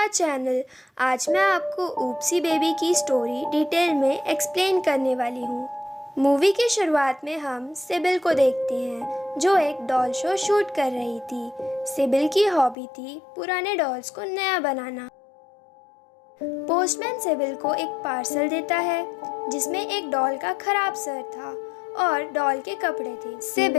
channel. आज मैं आपको ऊप्सी बेबी की स्टोरी डिटेल में एक्सप्लेन करने वाली हूँ। मूवी की शुरुआत में हम सिबिल को देखते हैं जो एक डॉल शो शूट कर रही थी। सिबिल की हॉबी थी पुराने डॉल्स को नया बनाना। पोस्टमैन सिबिल को एक पार्सल देता है जिसमें एक डॉल का खराब सर था और डॉल के कपड़े थे।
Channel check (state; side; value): drops out; right; at 12.8 s